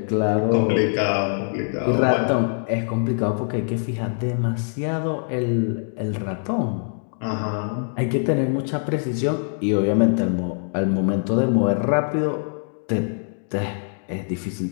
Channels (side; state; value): right; silent; digital silence